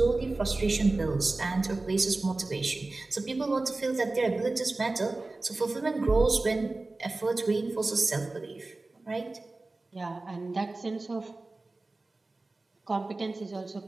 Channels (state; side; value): quieter; left; 3.2 dB